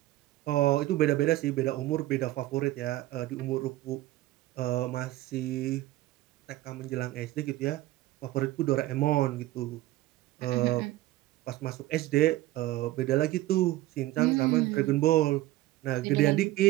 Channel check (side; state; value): left; quieter; 16.6 dB